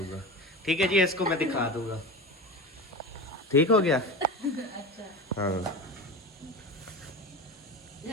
ठीक है जी, इसको मैं दिखा दूंगा। ठीक हो गया? अच्छा हाँ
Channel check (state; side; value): normal; both; correlation 0.28